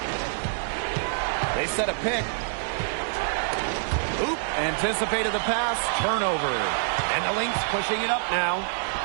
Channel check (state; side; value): silent; left; 61 dB below the other